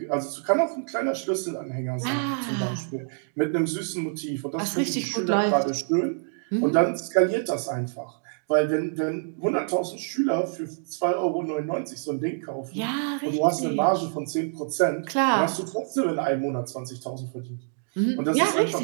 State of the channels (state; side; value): silent; left; digital silence